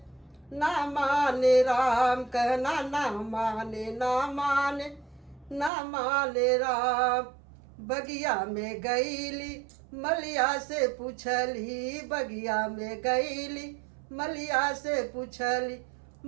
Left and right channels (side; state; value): left; drops out; at 5.7 s